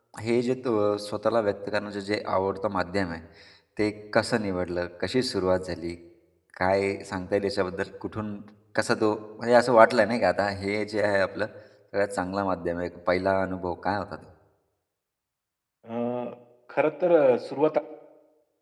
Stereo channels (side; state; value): both; identical; correlation 1.00